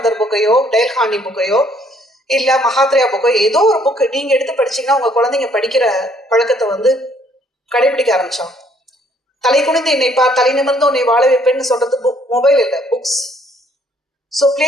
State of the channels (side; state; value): both; normal; correlation 0.64